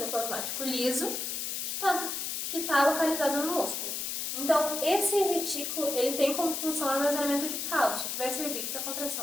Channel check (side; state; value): left; noise; hiss, 3 dB below the sound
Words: liso, que está localizado no músculo. Então, esse retículo ele tem como função o armazenamento de cálcio, que vai servir para a